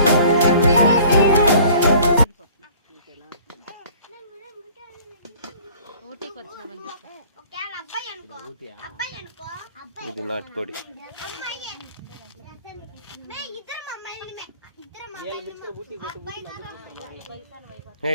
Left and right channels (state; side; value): inverted; both; correlation -0.51